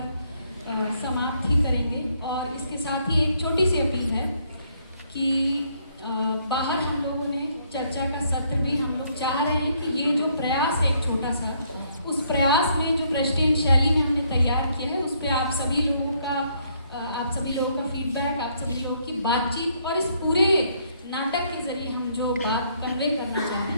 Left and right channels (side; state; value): both; inverted; correlation -0.69